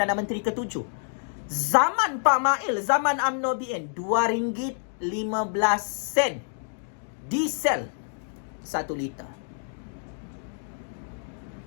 Menteri ke-7. Zaman Pak Mail, zaman UMNO BN, RM2.15 diesel 1 liter.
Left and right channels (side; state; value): right; silent; 60 dB below the other